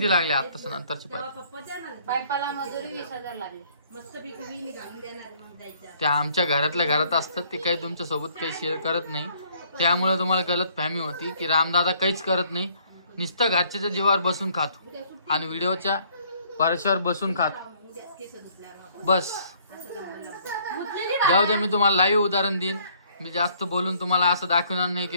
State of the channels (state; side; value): inverted; both; correlation -0.62